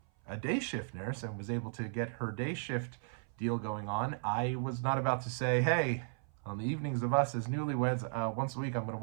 a day shift nurse and was able to get her day shift deal going on, I was not about to say, hey, on the evenings of us as newlyweds, once a week I'm going to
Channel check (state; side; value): silent; left; 54 dB below the other